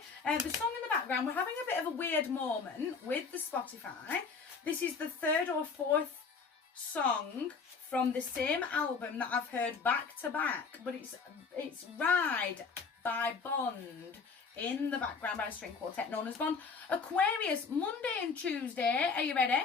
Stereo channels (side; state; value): right; quieter; 5.1 dB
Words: The song in the background, we're having a bit of a weird moment with the Spotify. This is the third or fourth song from the same album that I've heard back to back, but it's Ride by Bond in the background by a string quartet known as Bond. Aquarius, Monday and Tuesday, are you ready?